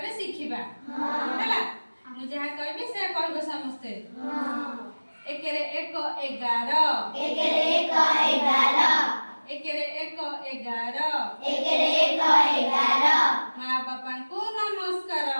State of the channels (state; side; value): inverted; both; correlation -1.00